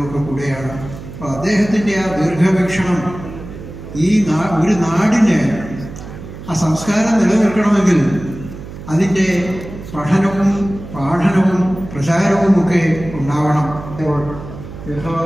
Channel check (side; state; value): right; noise; hum, 13 dB below the sound